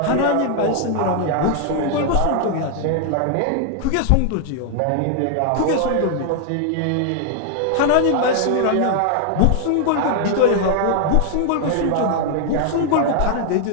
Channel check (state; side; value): different; both; correlation 0.00